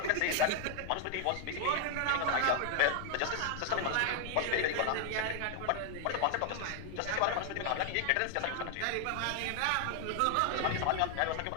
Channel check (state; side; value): different; both; correlation 0.00